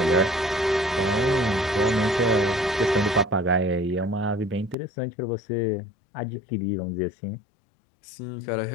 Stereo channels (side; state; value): right; drops out; at 4.8 s